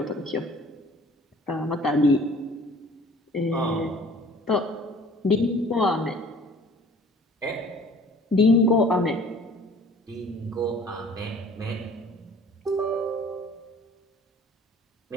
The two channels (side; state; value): both; normal; correlation 0.50